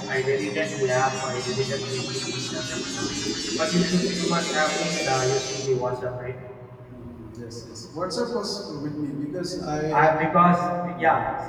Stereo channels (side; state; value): both; identical; correlation 1.00